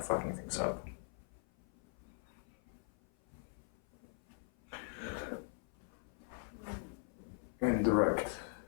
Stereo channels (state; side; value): silent; right; 51 dB below the other